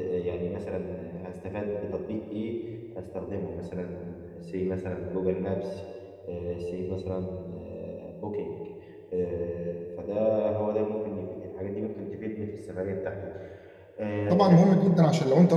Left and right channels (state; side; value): identical; both; correlation 1.00